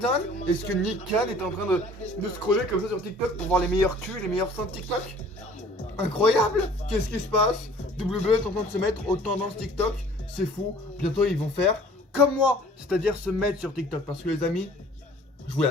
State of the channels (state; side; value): normal; both; correlation 0.51